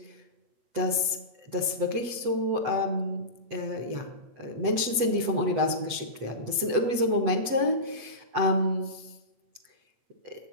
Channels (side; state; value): left; late; 8.0 ms